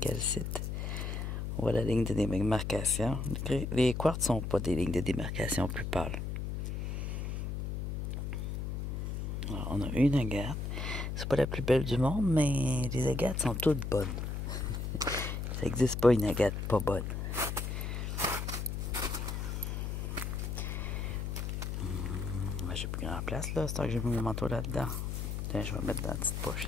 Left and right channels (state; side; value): noise; left; hum, 3 dB below the sound